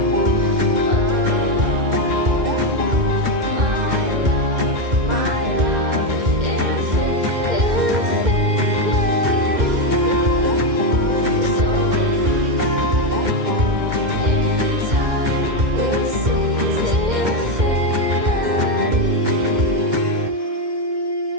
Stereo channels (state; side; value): late; left; 2.1 ms